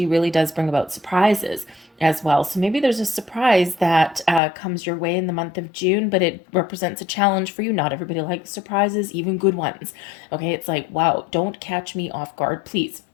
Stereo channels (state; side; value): drops out; right; at 4.4 s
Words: really does bring about surprises as well. So maybe there's a surprise that comes your way in the month of June, but it represents a challenge for you. Not everybody likes surprises, even good ones, okay? It's like, wow, don't catch me off guard, please.